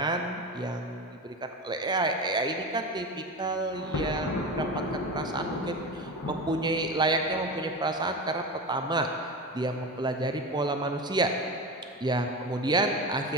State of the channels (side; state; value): both; normal; correlation 0.25